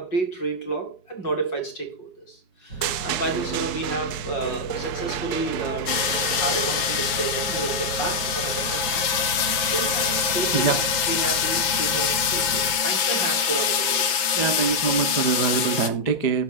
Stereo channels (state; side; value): late; right; 5.8 ms